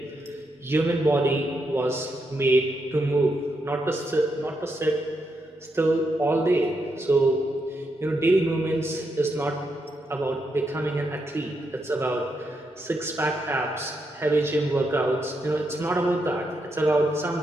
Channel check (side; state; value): both; normal; correlation 0.81